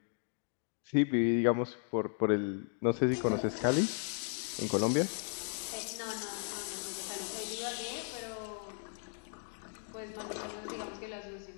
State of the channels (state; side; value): silent; right; 54 dB below the other